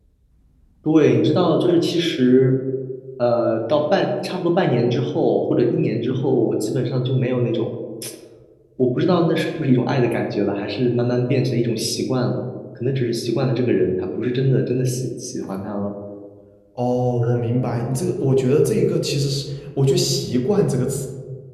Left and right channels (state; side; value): identical; both; correlation 1.00